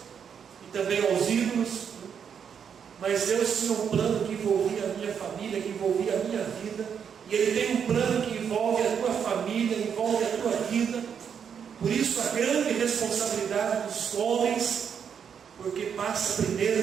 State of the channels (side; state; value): left; quieter; 7.5 dB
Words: e também aos ídolos, mas Deus tinha um plano que envolvia a minha família, que envolvia a minha vida, e Ele tem um plano que envolve a tua família, envolve a tua vida. Por isso a grande responsabilidade dos homens, porque passa